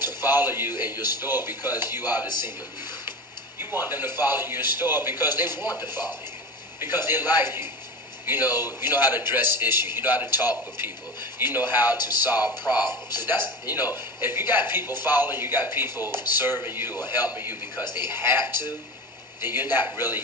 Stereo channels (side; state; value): both; normal; correlation 0.29